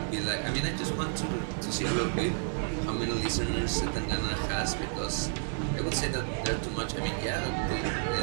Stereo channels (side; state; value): left; silent; 57 dB below the other